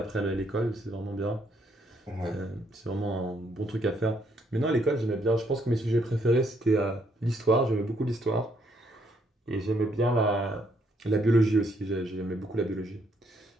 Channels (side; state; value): both; normal; correlation 0.71